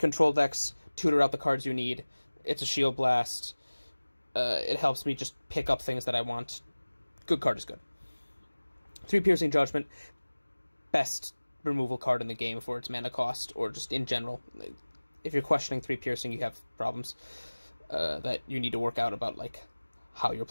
decks, tutor out the cards you need. It's a Shield Blast. It helps me just pick up things that I want. Good card is good. 3 Piercing Judgment. Best removal card in the game for its mana cost, or just in general. If you're questioning 3 Piercing, you have problems that you need to work out about, like, how you're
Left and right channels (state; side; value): inverted; both; correlation -1.00